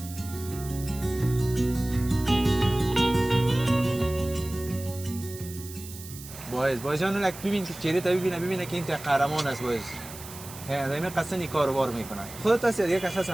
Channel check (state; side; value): noise; right; hiss, 14 dB below the sound